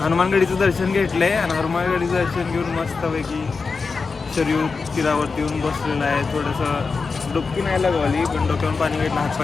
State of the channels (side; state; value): right; quieter; 4.6 dB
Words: दर्शन घेतलंय आणि हनुमानगडीचं दर्शन घेऊन मस्तपैकी शरीर तीरावरती येऊन बसलेलं आहे. थोडंसं डुबकी नाही लागवली, पण डोक्यावरून पाणी घेतलं,